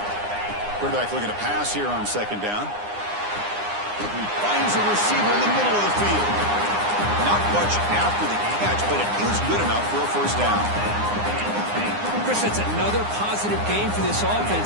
Quarterback looking to pass here on 2nd down. He finds a receiver in the middle of the field. Not much after the catch, but it is good enough for a 1st down. Chris, that's another positive game for this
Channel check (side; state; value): left; late; 9.8 ms